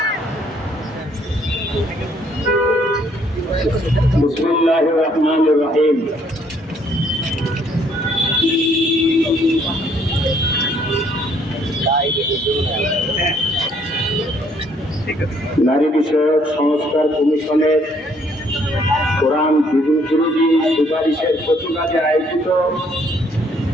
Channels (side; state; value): both; normal; correlation 0.65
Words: बिस्मिल्लाहिर रहमानिर रहीम। নারী বিষয়ক সংস্কার কমিশনের কোরআন বিরোধী সুপারিশের প্রতিবাদে আয়োজিত